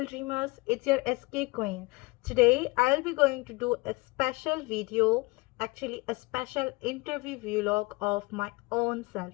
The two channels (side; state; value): right; quieter; 25.0 dB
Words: dreamers, it's your SK Queen. Today I'll be going to do a special video, actually a special interview vlog of my own self.